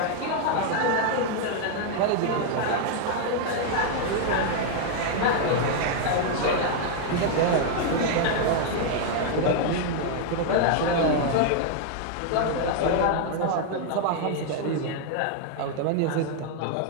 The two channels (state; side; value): different; both; correlation 0.00